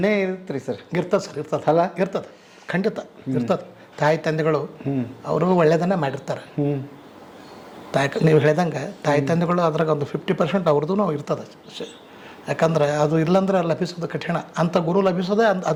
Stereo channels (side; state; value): both; identical; correlation 1.00